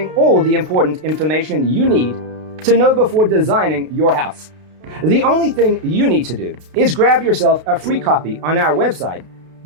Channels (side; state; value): left; late; 32 ms